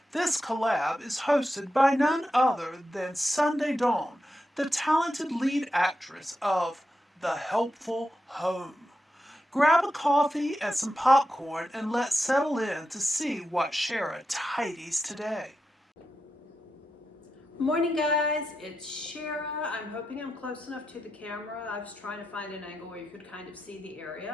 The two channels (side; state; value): both; normal; correlation 0.88